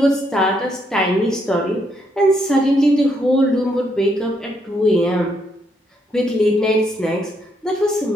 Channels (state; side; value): normal; both; correlation 0.75